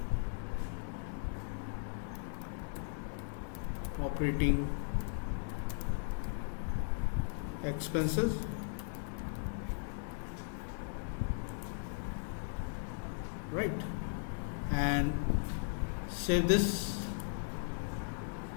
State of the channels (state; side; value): silent; right; digital silence